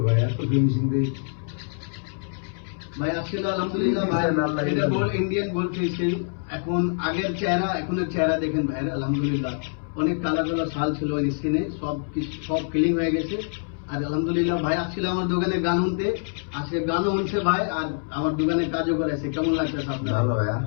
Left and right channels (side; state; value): right; silent; 62 dB below the other